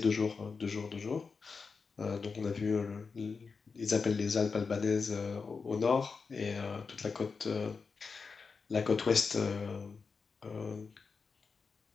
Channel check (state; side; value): quieter; right; 5.0 dB